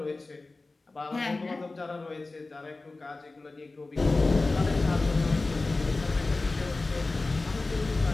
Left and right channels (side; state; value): right; quieter; 3.4 dB